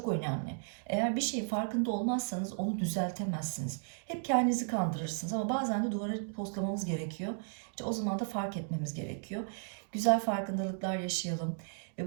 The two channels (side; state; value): left; silent; digital silence